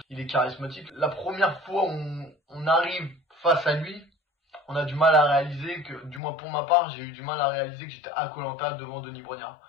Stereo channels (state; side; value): drops out; right; at 6.2 s